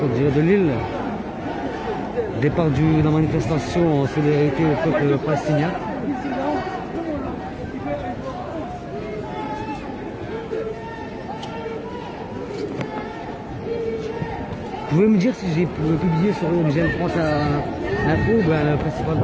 en direct de Lille. Départ de la manifestation en solidarité au peuple palestinien. Vous pouvez me dire si j'ai publié sur MGL France info ou bien le principal?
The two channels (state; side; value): identical; both; correlation 1.00